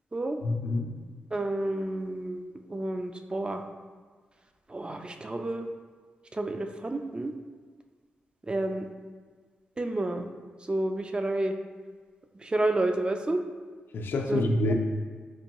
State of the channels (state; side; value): normal; both; correlation 0.88